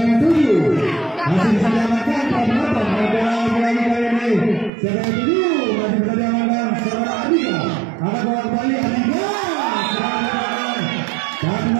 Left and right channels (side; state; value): left; drops out; at 4.7 s